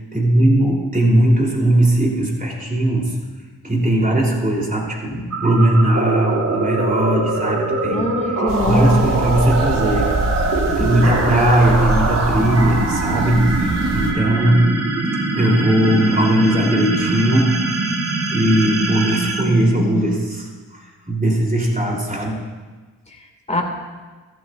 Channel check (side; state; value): both; normal; correlation 0.66